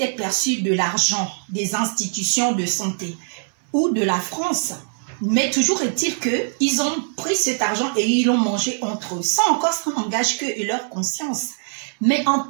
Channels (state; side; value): silent; left; 62 dB below the other